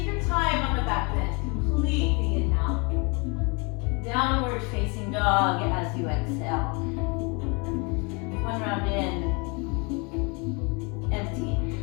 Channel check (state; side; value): quieter; right; 30.8 dB